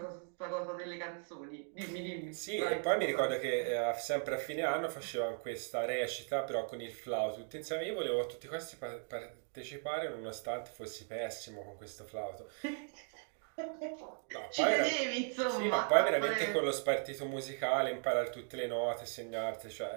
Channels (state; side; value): silent; left; 53 dB below the other